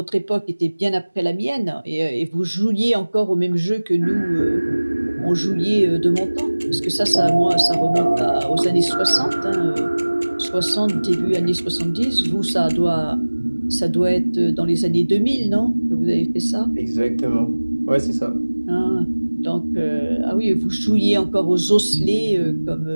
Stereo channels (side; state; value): both; inverted; correlation -1.00